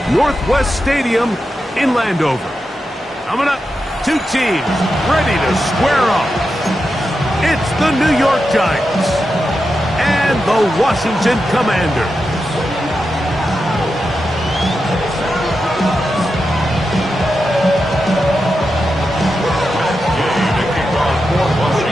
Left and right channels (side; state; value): both; normal; correlation 0.89